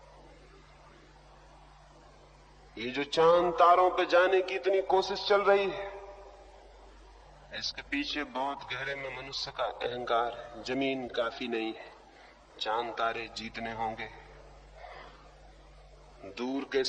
ये जो चांद तारों पे जाने की इतनी कोशिश चल रही है, इसके पीछे बहुत गहरे में मनुष्य का अहंकार है। जमीन काफी नहीं है, चांद तारे जीतने होंगे, दूर के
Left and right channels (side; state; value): both; identical; correlation 1.00